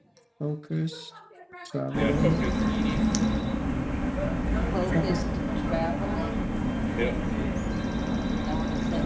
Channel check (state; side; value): identical; both; correlation 1.00